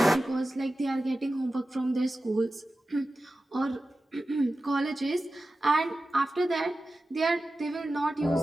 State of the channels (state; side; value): normal; both; correlation 0.94